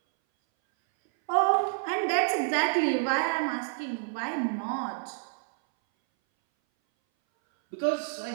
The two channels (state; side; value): silent; left; 59 dB below the other